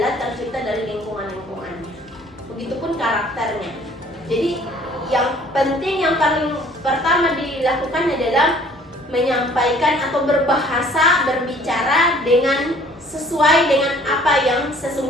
tercipta dari lingkungannya. Begitupun karakternya. Jadi yang penting, yang paling pertama dilakukan adalah menyampaikan atau berbahasa, berbicara dengan sesuai dengan apa yang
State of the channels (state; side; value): normal; both; correlation 0.55